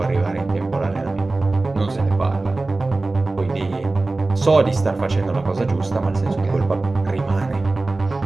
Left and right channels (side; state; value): left; quieter; 3.2 dB